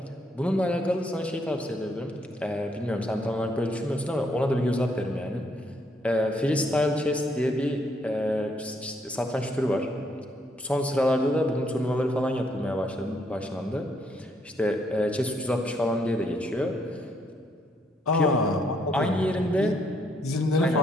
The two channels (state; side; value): normal; both; correlation 0.71